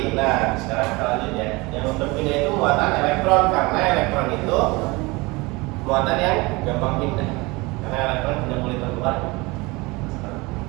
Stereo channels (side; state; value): left; quieter; 24.3 dB